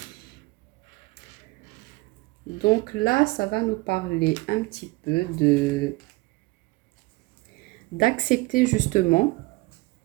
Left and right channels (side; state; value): left; quieter; 23.3 dB